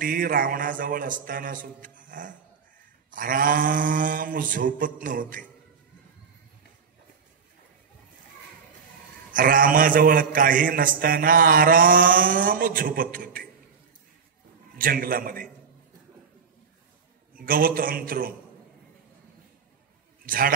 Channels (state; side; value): quieter; left; 6.1 dB